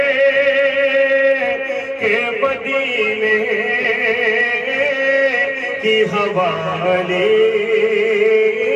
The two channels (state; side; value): identical; both; correlation 1.00